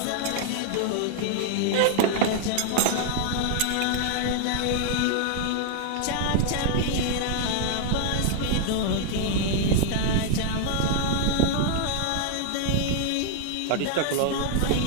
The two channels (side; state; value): both; different; correlation 0.00